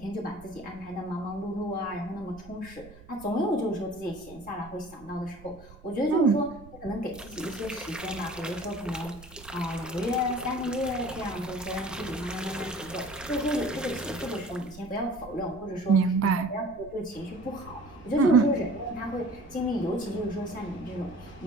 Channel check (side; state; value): right; noise; rumble, 20 dB below the sound